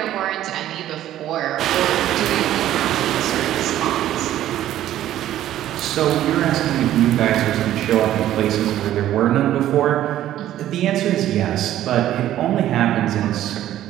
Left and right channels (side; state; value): left; quieter; 12.7 dB